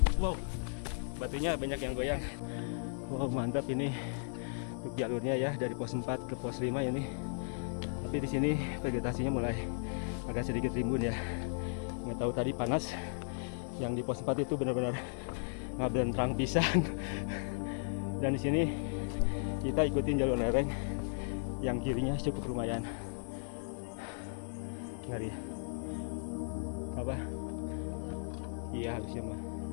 Wow, batunya banyak yang goyang. Wow, mantap ini untuk jalurnya ya, dari pos 4 ke pos 5 ini. Tapi di sini vegetasinya mulai agak sedikit rimbun ya. Nggak tahu tadi panas. Yang di pos 4 itu benar-benar ngaben terang pisan. Dan di sini kita ikutin jalur lereng yang kirinya cukup lumayan. Ngeri. Apa? Iya harusnya mah.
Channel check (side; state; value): right; silent; digital silence